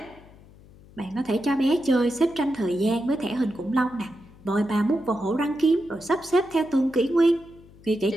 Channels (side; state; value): left; noise; hum, 23 dB below the sound